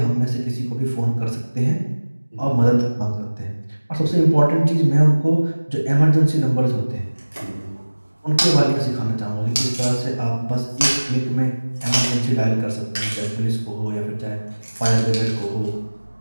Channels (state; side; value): inverted; both; correlation -1.00